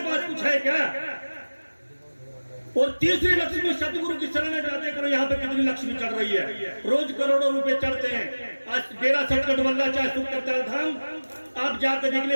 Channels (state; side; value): inverted; both; correlation -1.00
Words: पास कुछ है क्या? और तीसरी लक्ष्मी सतगुरु की शरण में जाते करो। यहाँ पे कितनी लक्ष्मी चढ़ रही है, रोज करोड़ों रुपए चढ़ते हैं। आज डेरा सटकट वल्ला चाहे सुख करता धाम, आप जाकर निकले,